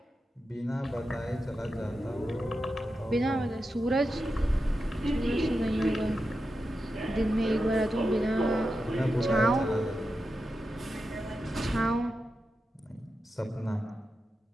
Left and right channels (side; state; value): both; normal; correlation 0.90